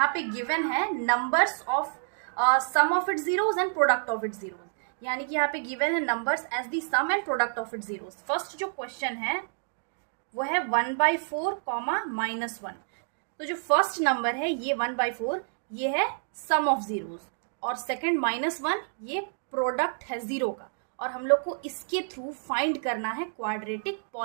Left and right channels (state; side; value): silent; left; digital silence